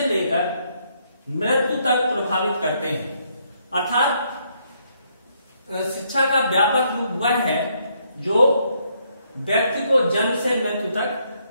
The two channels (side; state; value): both; inverted; correlation -0.73